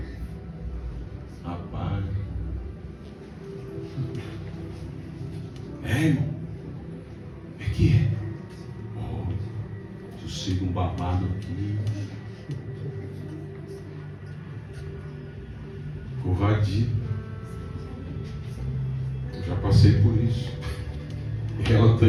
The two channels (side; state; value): both; identical; correlation 1.00